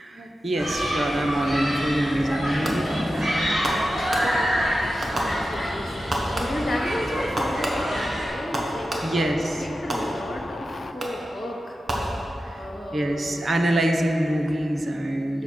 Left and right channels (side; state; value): both; normal; correlation 0.92